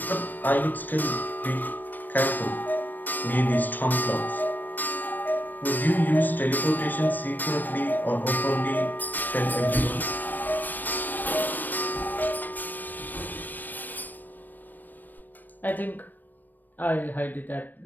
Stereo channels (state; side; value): late; right; 0.089 ms